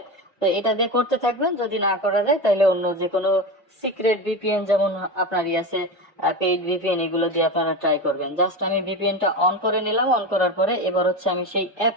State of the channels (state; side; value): normal; both; correlation 0.22